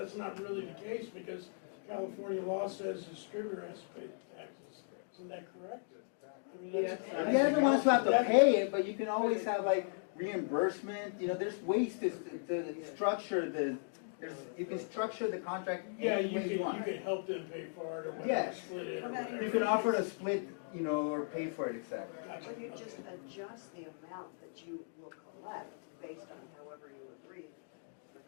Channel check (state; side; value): silent; right; digital silence